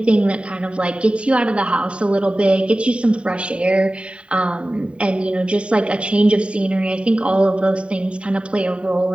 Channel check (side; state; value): left; late; 0.058 ms